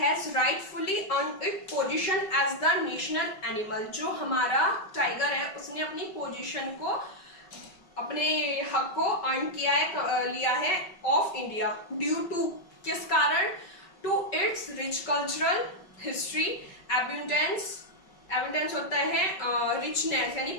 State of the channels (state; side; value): late; right; 5.3 ms